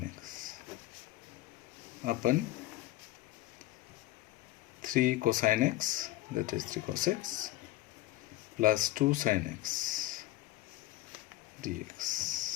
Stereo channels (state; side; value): quieter; right; 16.3 dB